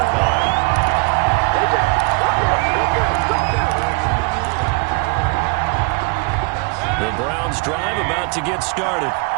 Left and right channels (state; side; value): quieter; left; 30.8 dB